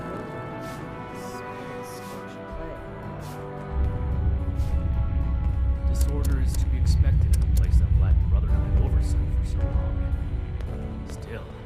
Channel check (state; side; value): identical; both; correlation 1.00